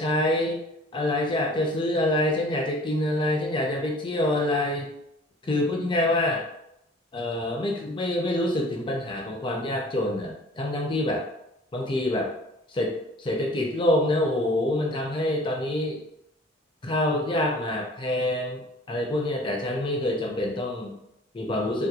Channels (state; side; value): normal; both; correlation 0.48